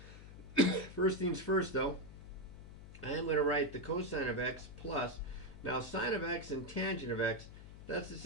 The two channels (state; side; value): noise; left; hum, 15 dB below the sound